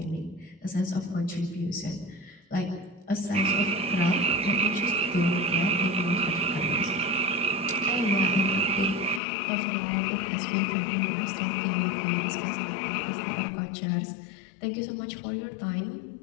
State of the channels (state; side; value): drops out; right; at 9.2 s